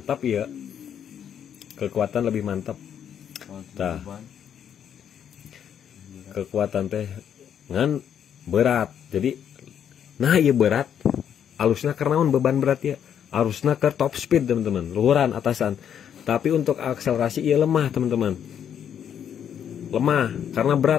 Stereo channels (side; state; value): right; quieter; 8.9 dB